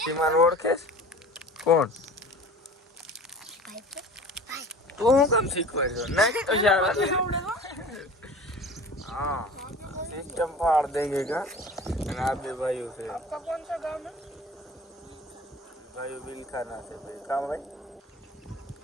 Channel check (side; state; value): both; normal; correlation 0.41